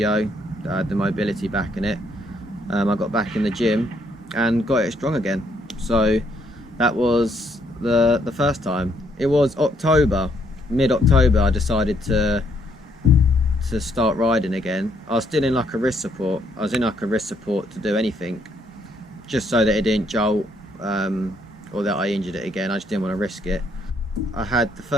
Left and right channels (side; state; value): both; normal; correlation 0.71